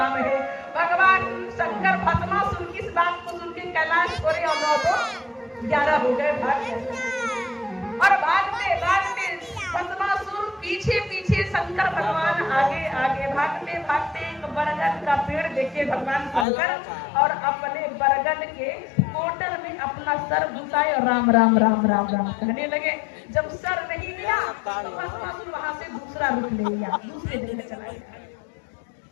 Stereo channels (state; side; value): drops out; right; at 16.4 s